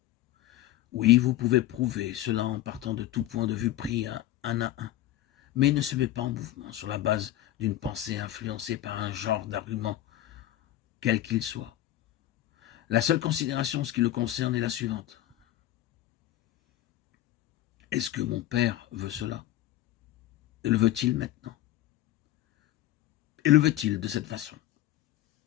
Oui, vous pouvez prouver cela en partant de tout point de vue pris un à un, mais il ne se met pas en mouvement sur la base d'une pensée influencée par un genre d'argument, quel qu'il soit. La seule considération, ce qui le concerne, est la suivante. Est-ce que mon père veut cela? Et le veut-il maintenant? Et le veut-il de cette façon?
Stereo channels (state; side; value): quieter; right; 13.8 dB